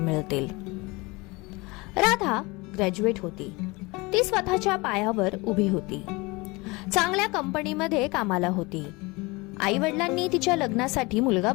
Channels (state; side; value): quieter; right; 24.7 dB